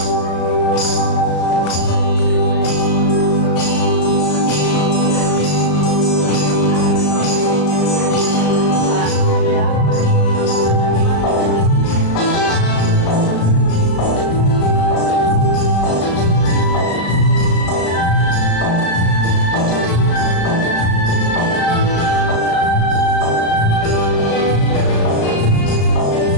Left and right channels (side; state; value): right; late; 34 ms